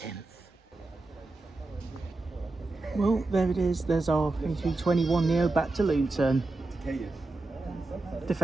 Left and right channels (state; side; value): quieter; left; 3.2 dB